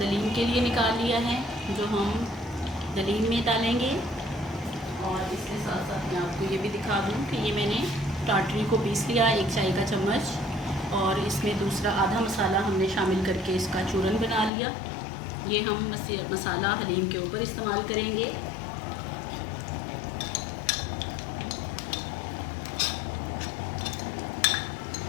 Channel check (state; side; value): drops out; right; at 14.5 s